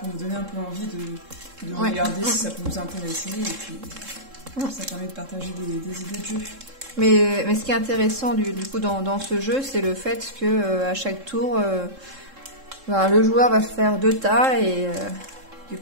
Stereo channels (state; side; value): late; left; 3.7 ms